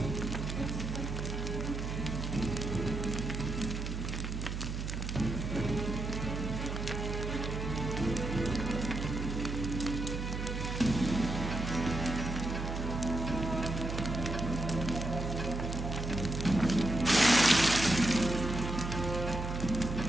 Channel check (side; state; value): right; noise; hum, 4 dB below the sound